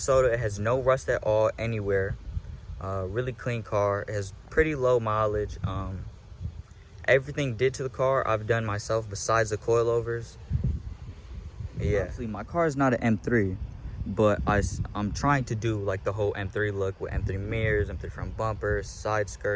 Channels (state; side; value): identical; both; correlation 1.00